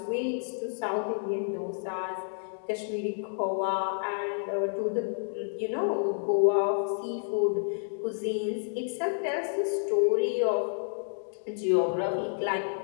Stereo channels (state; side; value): silent; right; digital silence